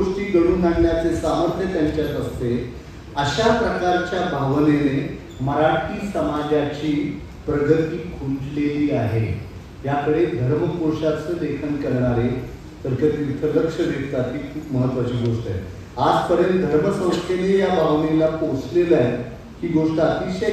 घडवून आणण्याचे सामर्थ्य त्यांच्यात असते. अशा प्रकारच्या भावनेने मराठी समाजाची प्रगती खुंटलेली आहे. याकडे धर्मकोशाचं लेखन करणारे तर्कतीर्थ लक्ष देतात ही खूप महत्वाची गोष्ट आहे. आजपर्यंत धर्मसंस्थेने या भावनेला पोचलेलं आहे ही गोष्ट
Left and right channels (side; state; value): both; identical; correlation 1.00